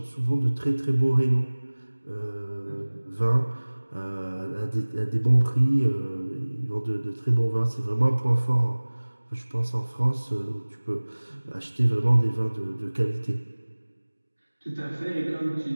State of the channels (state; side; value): inverted; both; correlation -1.00